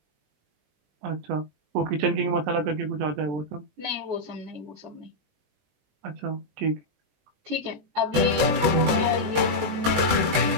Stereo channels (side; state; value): left; late; 20 ms